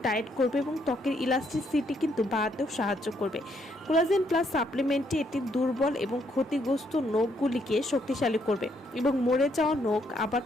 টাইট করবে এবং ত্বকের ইলাস্টিসিটি কিন্তু বাড়াতেও সাহায্য করবে। কোলাজেন প্লাস সাপ্লিমেন্টটি এটি দুর্বল এবং ক্ষতিগ্রস্ত নখগুলিকে শক্তিশালী করবে এবং মরে যাওয়া নখ আবার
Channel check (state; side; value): normal; both; correlation 0.72